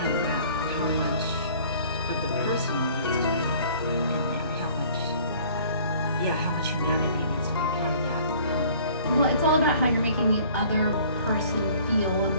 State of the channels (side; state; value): both; inverted; correlation -0.53